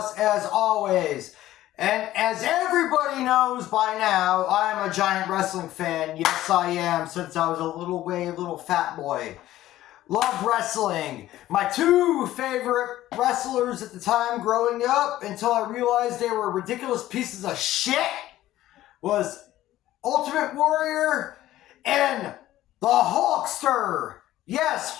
as always. And as everybody knows by now, I am a giant wrestling fan. Yes, I am, since I was a little fat boy. Love wrestling. My two favorite wrestlers at the time growing up, until I realized they were ridiculous pieces of shit, was Ultimate Warrior and the Hulkster. Yes,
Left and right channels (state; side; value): quieter; right; 14.5 dB